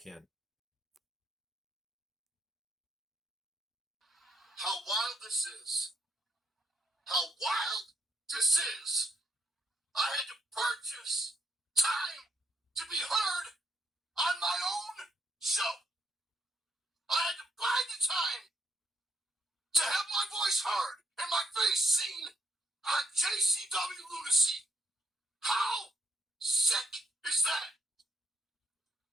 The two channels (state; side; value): normal; both; correlation 0.75